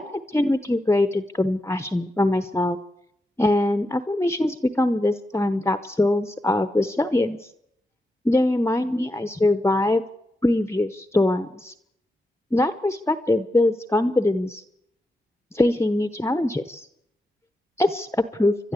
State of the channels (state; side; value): normal; both; correlation 0.87